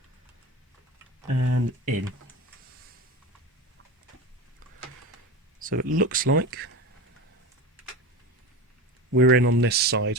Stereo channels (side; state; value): both; normal; correlation 0.27